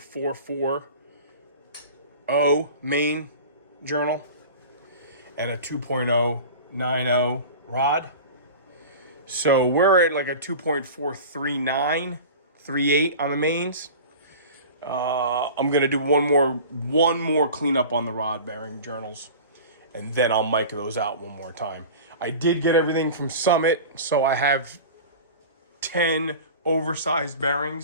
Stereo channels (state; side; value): inverted; both; correlation -0.36